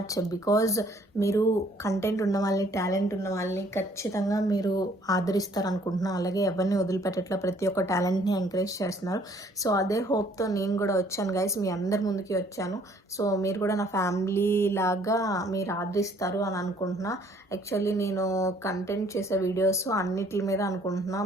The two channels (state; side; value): normal; both; correlation 0.60